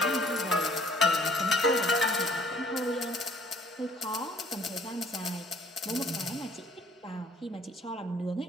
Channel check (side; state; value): both; normal; correlation 0.58